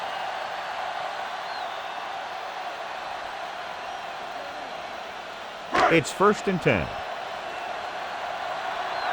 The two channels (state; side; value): identical; both; correlation 1.00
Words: line. It's first and 10.